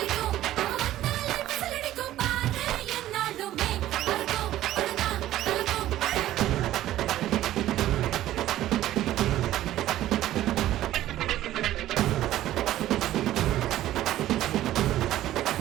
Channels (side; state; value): left; quieter; 13.9 dB